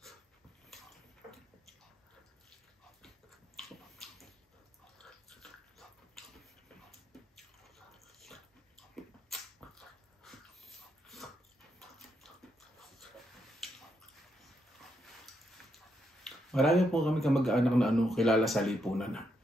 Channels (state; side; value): normal; both; correlation 0.80